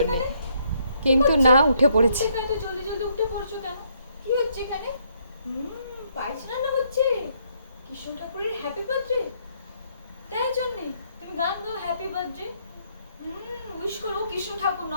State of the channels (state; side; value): inverted; both; correlation -0.71